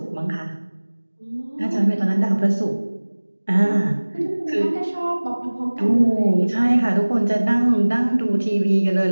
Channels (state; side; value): inverted; both; correlation -1.00